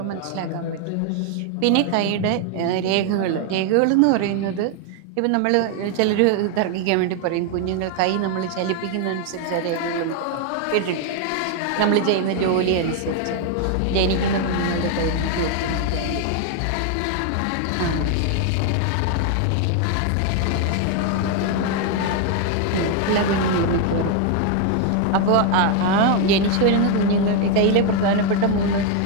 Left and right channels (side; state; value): both; different; correlation 0.01